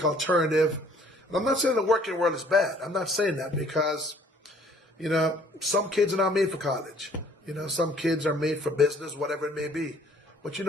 alternative. And I'm not saying the working world is bad. I'm not saying that because, some kids are not made for college. Some kids are made for business, whatever it may be. But you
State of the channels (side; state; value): both; normal; correlation 0.58